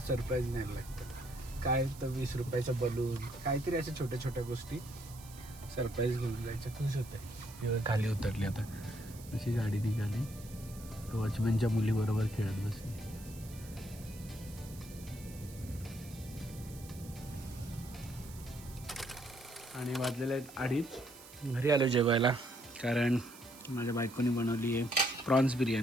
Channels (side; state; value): right; noise; hiss, 18 dB below the sound